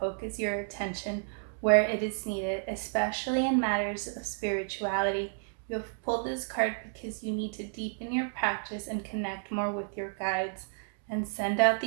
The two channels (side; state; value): left; silent; digital silence